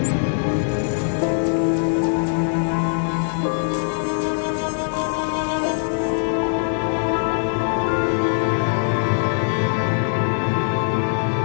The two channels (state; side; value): silent; right; 64 dB below the other